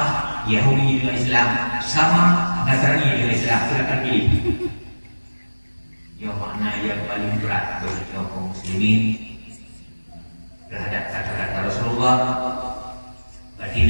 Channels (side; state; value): both; inverted; correlation -1.00